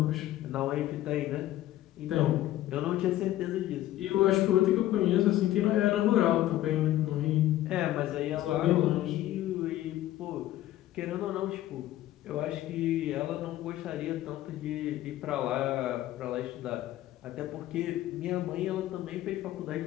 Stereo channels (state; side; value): quieter; right; 14.2 dB